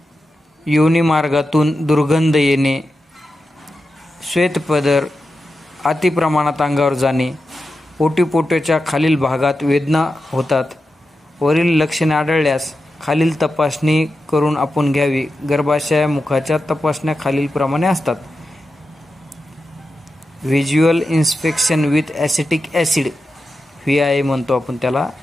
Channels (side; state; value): both; normal; correlation 0.90